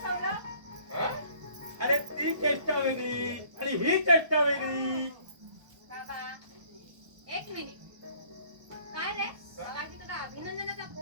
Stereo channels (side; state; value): left; late; 1.2 ms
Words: हा? अरे ती चेष्टा वेगळी आणि ही चेष्टा वेगळी. बाबा एक मिनिट. काय रे बाबाजी, तुला अभिनंदनाचा